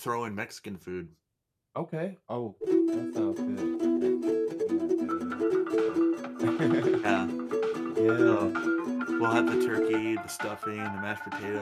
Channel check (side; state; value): both; identical; correlation 1.00